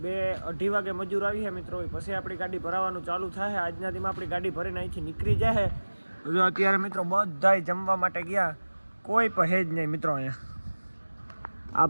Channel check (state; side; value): inverted; both; correlation -1.00